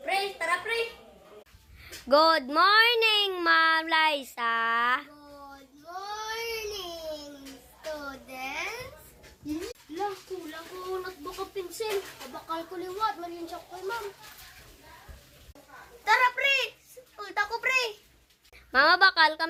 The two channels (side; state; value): both; identical; correlation 1.00